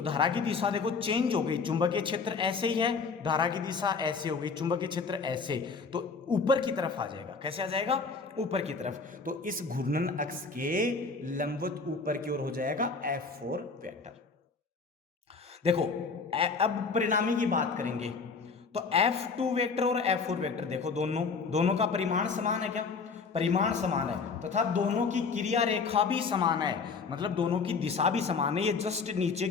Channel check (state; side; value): quieter; right; 4.8 dB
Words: धारा की दिशा देखो चेंज हो गई, चुंबकीय क्षेत्र ऐसे ही है, धारा की दिशा ऐसे हो गई, चुंबकीय क्षेत्र ऐसे, तो ऊपर की तरफ आ जाएगा, कैसे आ जाएगा, ऊपर की तरफ, तो इस घूर्णन अक्ष के लंबवत ऊपर की ओर हो जाएगा F4 वेक्टर। देखो अब परिणामी की बात करेंगे, तो F2 वेक्टर और F4 वेक्टर देखो दोनों का परिमाण समान है, क्या परिमाण समान है, तथा दोनों की क्रिया रेखा भी समान है, मतलब दोनों की दिशा भी समान है, ये जस्ट नीचे